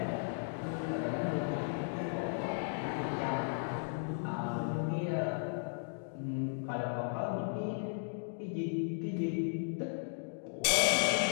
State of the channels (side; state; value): right; silent; digital silence